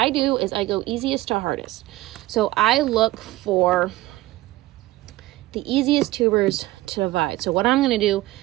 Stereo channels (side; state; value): left; quieter; 17.9 dB